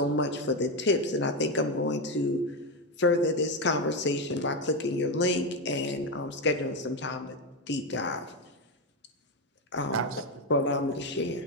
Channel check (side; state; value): both; normal; correlation 0.10